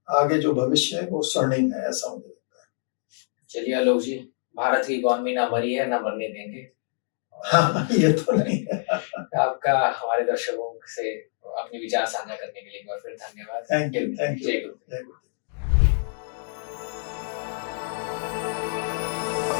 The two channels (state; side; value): silent; right; digital silence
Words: आगे जो भविष्य है वो स्वर्णिम है, ऐसा मुझे लगता है। चलिए आलोक जी, भारत की इकोनॉमी ना मरी है, ना मरने देंगे। हाँ, ये तो नहीं है। आपका हमारे दर्शकों से अपने विचार साझा करने के लिए एक बार फिर धन्यवाद। Thank you. जय गुरु।